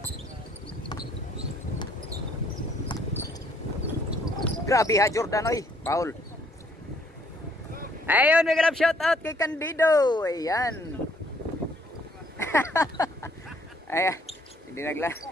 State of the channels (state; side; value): normal; both; correlation 0.65